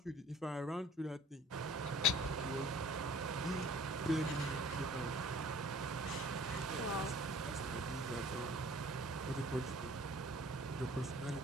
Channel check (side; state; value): both; normal; correlation 0.50